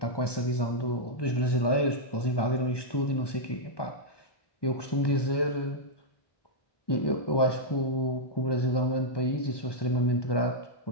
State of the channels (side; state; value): right; late; 1.2 ms